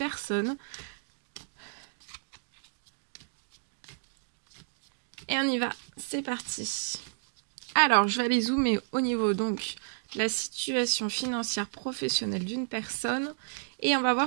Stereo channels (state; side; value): silent; left; digital silence